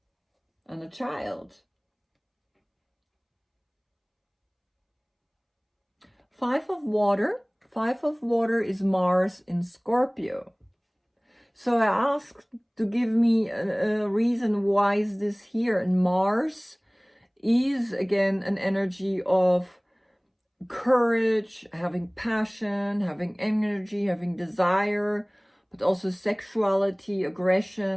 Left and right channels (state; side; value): identical; both; correlation 1.00